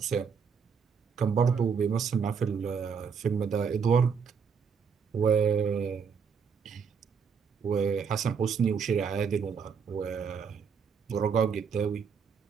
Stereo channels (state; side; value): quieter; left; 6.3 dB